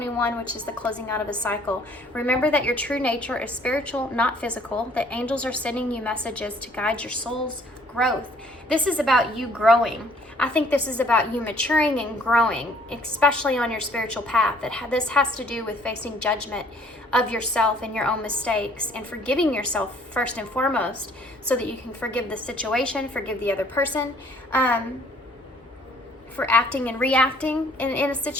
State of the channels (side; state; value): both; normal; correlation 0.59